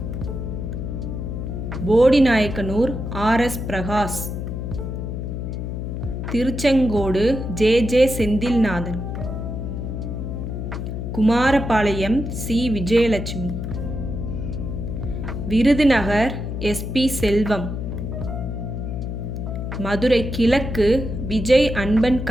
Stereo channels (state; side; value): noise; left; hum, 5 dB below the sound